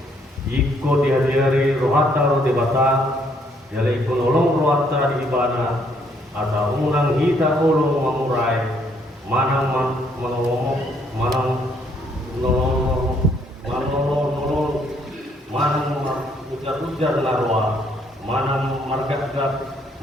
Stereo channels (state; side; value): normal; both; correlation 0.68